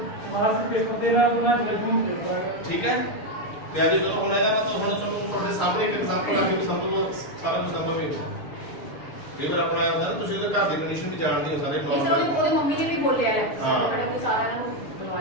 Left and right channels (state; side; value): late; right; 6.9 ms